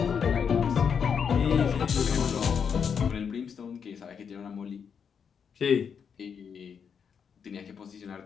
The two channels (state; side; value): quieter; right; 6.9 dB